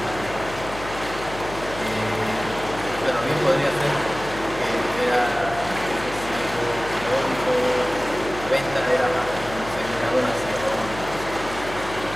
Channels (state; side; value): noise; left; hum, 13 dB below the sound